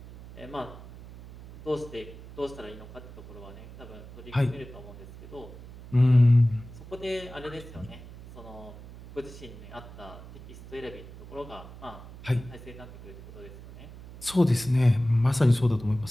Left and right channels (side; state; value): right; noise; hum, 16 dB below the sound